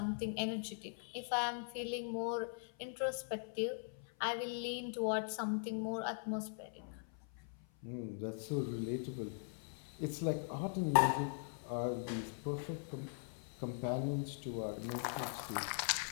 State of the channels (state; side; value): silent; right; 50 dB below the other